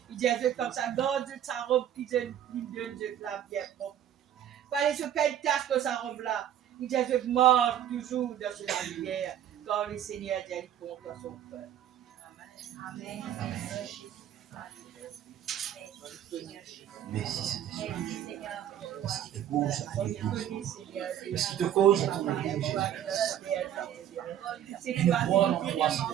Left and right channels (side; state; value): left; quieter; 10.5 dB